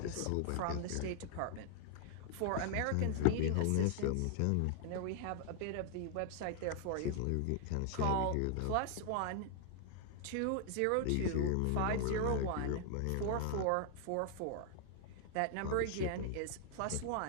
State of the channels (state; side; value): different; both; correlation -0.01